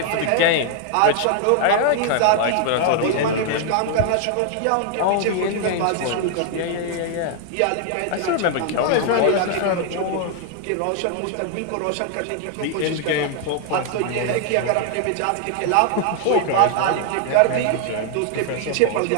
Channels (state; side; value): different; both; correlation 0.00